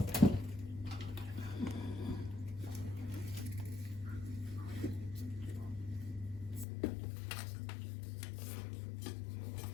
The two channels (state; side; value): drops out; right; at 6.7 s